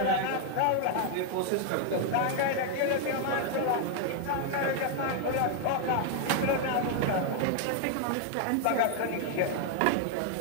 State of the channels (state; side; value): different; both; correlation 0.00